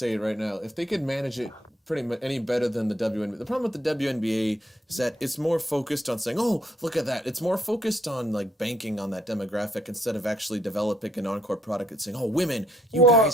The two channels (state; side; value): normal; both; correlation 0.71